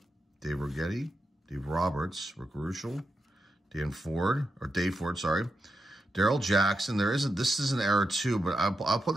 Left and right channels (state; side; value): normal; both; correlation 0.87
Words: Dave Righetti, Dave Roberts, Rick Ruschel, Dave Ford, sorry. Daryl Jackson. This is an error too, but I'll put